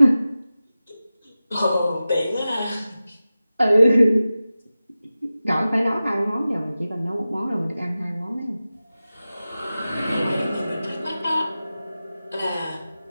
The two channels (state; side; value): inverted; both; correlation -0.95